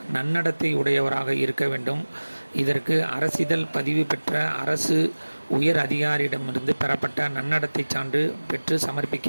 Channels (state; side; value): inverted; both; correlation -1.00